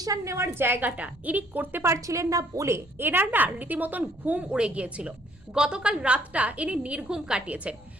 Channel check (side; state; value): both; normal; correlation 0.64